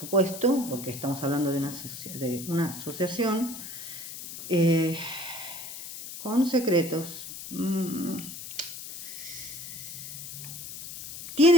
porque estamos hablando de una asociación con secretos.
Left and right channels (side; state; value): left; noise; hiss, 10 dB below the sound